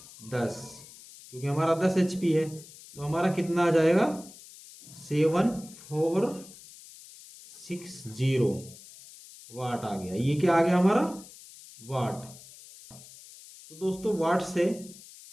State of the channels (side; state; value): left; noise; hiss, 19 dB below the sound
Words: 10, क्योंकि हमारा 10 एचपी है, तो हमारा कितना आ जाएगा, 7460 वाट आ गया। ये क्या आ गया हमारा, वाट। तो दोस्तों वाट